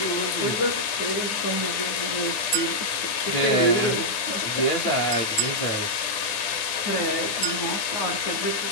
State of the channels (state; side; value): late; right; 9.5 ms